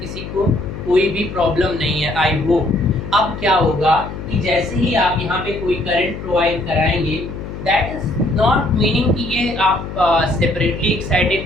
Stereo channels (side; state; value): left; noise; hum, 9 dB below the sound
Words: को कोई भी प्रॉब्लम नहीं है, आई होप। अब क्या होगा कि जैसे ही आप यहाँ पे कोई करंट प्रोवाइड कराएंगे, दैट इज नॉट मीनिंग कि ये आप सेपरेटली